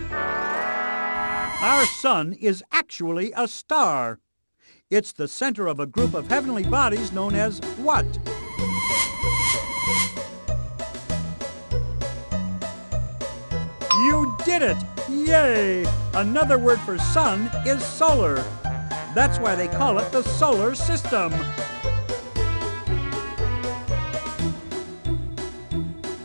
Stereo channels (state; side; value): inverted; both; correlation -1.00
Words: Our sun is actually a star. It's the center of a group of heavenly bodies known as what? You did it! Yay! Another word for sun is solar. That's why they call it the solar system.